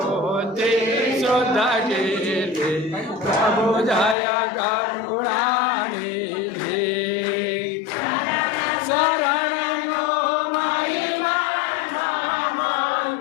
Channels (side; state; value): right; drops out; at 4.2 s